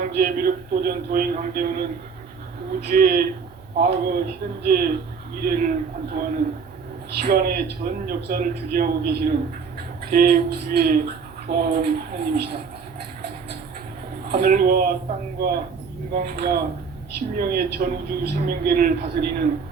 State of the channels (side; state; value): left; quieter; 5.6 dB